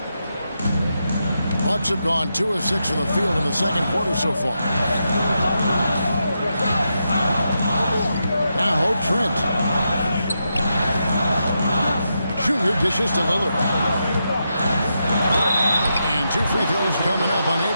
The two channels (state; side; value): inverted; both; correlation -0.85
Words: Bucks have gone 2 of 6 from the field in the second quarter so far. Now Trent. Junior dishes to Lillard. And 2 free throws coming up.